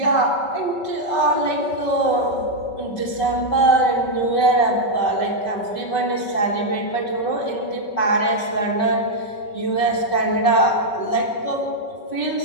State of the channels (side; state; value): right; late; 5.3 ms